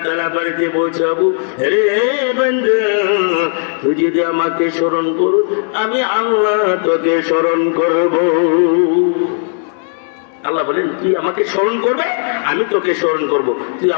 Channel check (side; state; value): right; silent; 64 dB below the other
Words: তাআলা বাড়িতে পৌঁছাবো। রে বান্দা, তুই যদি আমাকে স্মরণ করো, আমি আল্লাহ তোকে স্মরণ করব। আল্লাহ বলেন, তুই আমাকে স্মরণ করবে, আমি তোকে স্মরণ করব। তুই